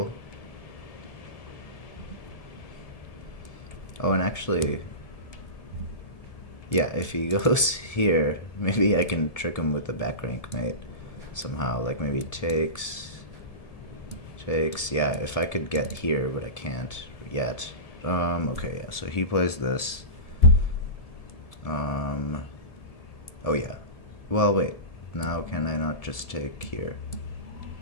Oh, and actually, yeah, if he goes here, maybe I can trick him with the back rank mate somehow. Like maybe takes. Yeah, if I could get here, but I can't yet. Okay, yeah, so he plays this. Oh yeah. Well, wait. Now can I not just take here?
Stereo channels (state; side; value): late; right; 1.7 ms